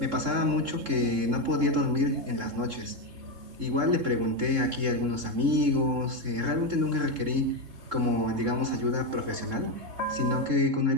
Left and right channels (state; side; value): late; left; 3.7 ms